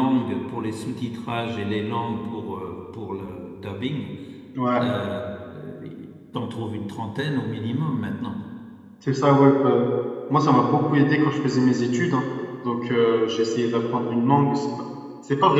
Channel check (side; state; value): both; identical; correlation 1.00